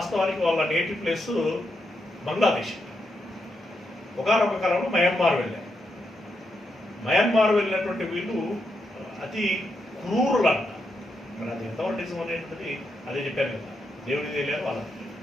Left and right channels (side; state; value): both; normal; correlation 0.83